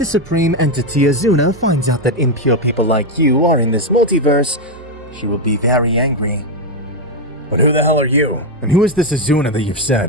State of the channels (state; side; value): normal; both; correlation 0.04